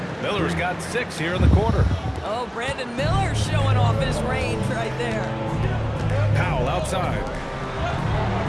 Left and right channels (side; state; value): both; identical; correlation 1.00